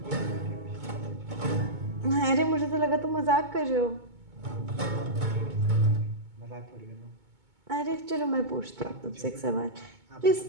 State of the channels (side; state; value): left; late; 2.2 ms